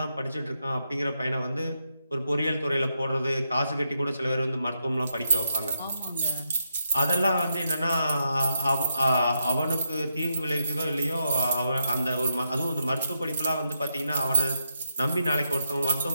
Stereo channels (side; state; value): both; inverted; correlation -0.82